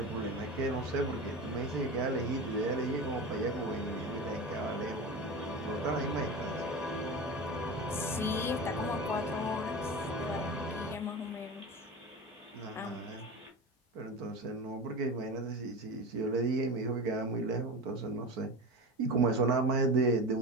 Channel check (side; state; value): both; normal; correlation 0.27